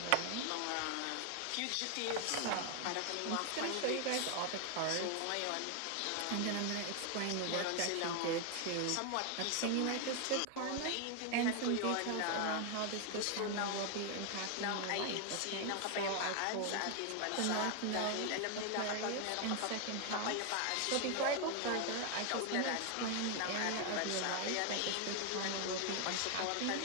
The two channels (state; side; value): different; both; correlation 0.00